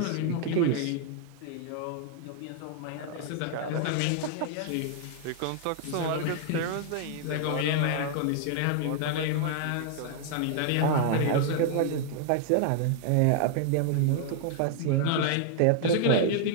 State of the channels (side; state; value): both; different; correlation 0.00